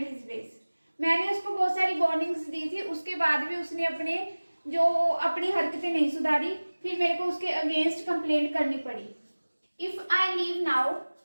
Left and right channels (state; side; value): inverted; both; correlation -1.00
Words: his ways. मैंने उसको बहुत सारी वार्निंग्स दी थी, उसके बाद भी उसने अपनी हरकतें नहीं सुधारी, फिर मेरे को उसके अगेंस्ट कंप्लेंट करनी पड़ी। If I leave now